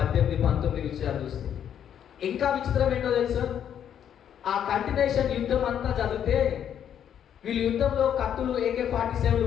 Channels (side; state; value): right; quieter; 9.3 dB